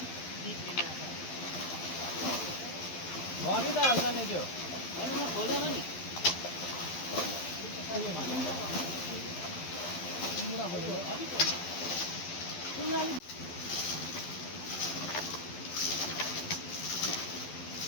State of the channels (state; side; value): late; right; 12 ms